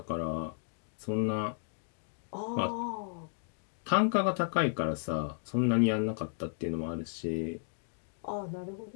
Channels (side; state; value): right; silent; digital silence